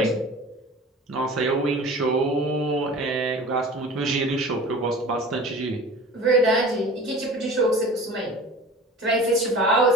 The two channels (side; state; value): both; normal; correlation 0.39